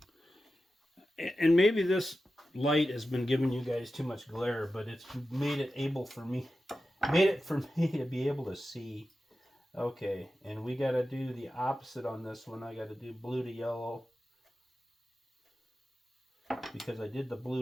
And maybe this light has been giving you guys too much glare, but it's made it for me to be able to see. Okay, and we got to do the opposite on this one. I got to do blue to yellow because I did the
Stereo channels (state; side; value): normal; both; correlation 0.92